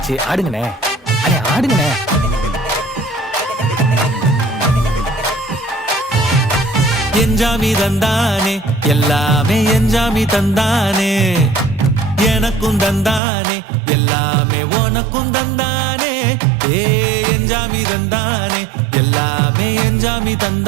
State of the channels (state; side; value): drops out; left; at 13.2 s